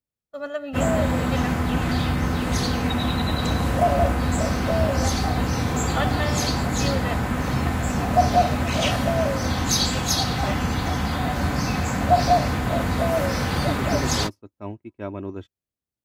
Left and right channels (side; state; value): both; identical; correlation 1.00